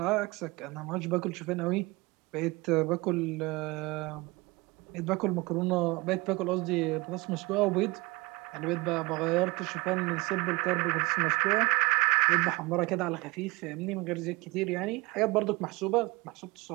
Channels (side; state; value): left; quieter; 23.8 dB